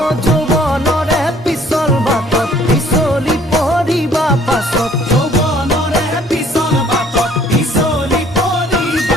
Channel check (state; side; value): normal; both; correlation 0.58